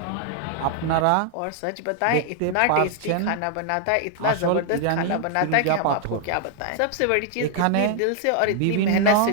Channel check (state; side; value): different; both; correlation 0.00